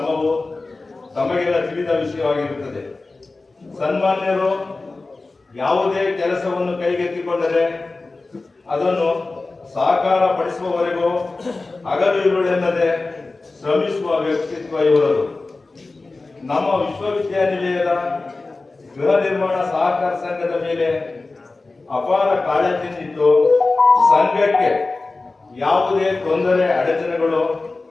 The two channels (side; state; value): right; quieter; 3.5 dB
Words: ತಮಗೆಲ್ಲ ತಿಳಿದ ವಿಷಯವಾಗಿರುತ್ತದೆ. ಸನ್ಮಾನ್ಯರು ಯಾವುದೇ ಕೆಲಸವನ್ನು ಕೈಗೆತ್ತಿಕೊಂಡರೆ ಅದನ್ನು ಸಾಕಾರ ಪಡಿಸುವವರೆಗೂ ಹಗಲು ಇರುಳೆನ್ನದೆ ಶ್ರಮಿಸುವ ವ್ಯಕ್ತಿತ್ವ ಇವರದು. ನಮ್ಮ ವಿಶ್ವವಿದ್ಯಾನಿಲಯದ ಗೃಹ ನಿರ್ಮಾಣ ಸಹಕಾರ ಸಂಘದ ಮೇಲೆ ಅಪಾರ ಕಾಳಜಿಯಿದ್ದು, ಸಂಘಕ್ಕೆ ಯಾವುದೇ ತೊಂದರೆ ಅಡಚಣೆಗಳು